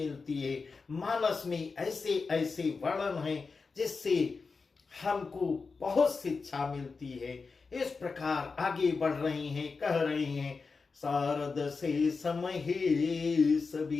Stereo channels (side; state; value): right; quieter; 4.6 dB